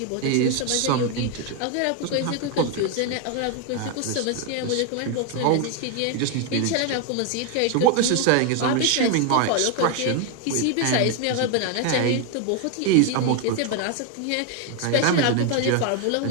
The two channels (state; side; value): different; both; correlation 0.01